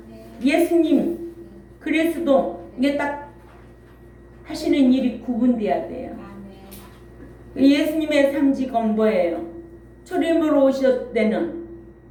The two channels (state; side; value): identical; both; correlation 1.00